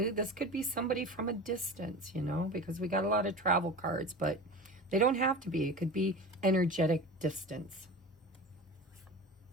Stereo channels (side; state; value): both; normal; correlation 0.32